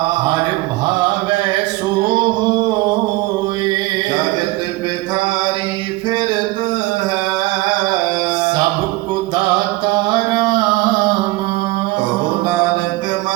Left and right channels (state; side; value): quieter; left; 19.6 dB